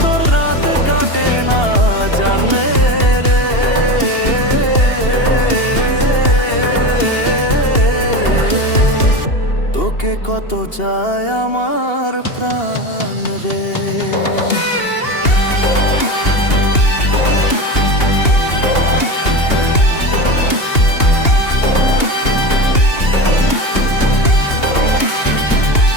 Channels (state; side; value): late; right; 2.8 ms